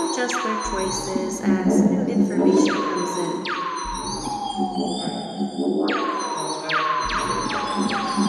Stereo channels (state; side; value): identical; both; correlation 1.00